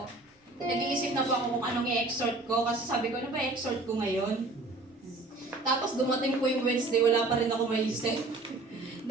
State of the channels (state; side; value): quieter; left; 3.1 dB